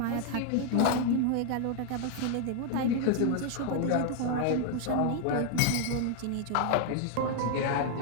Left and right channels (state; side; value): different; both; correlation 0.00